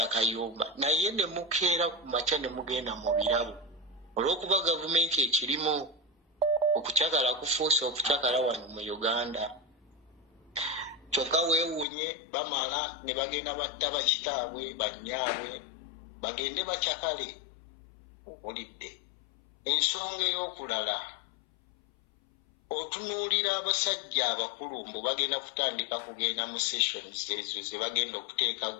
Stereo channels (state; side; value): drops out; right; at 11.9 s